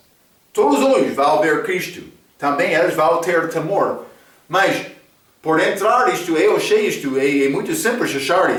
Todos os olhos vão ver Cristo. Também eles vão ter temor. Mas, por entrar isto, eu achei isto, é muito simples achar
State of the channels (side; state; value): both; identical; correlation 1.00